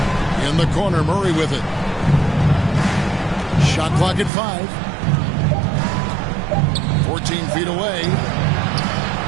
In the corner, Murray with it. Shot clock at 5. 14 feet away.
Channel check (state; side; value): drops out; left; at 4.3 s